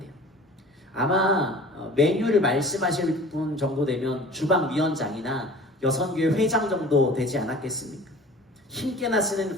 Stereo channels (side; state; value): both; normal; correlation 0.43